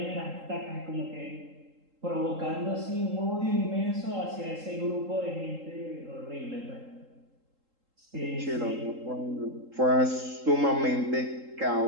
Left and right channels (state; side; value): late; left; 3.8 ms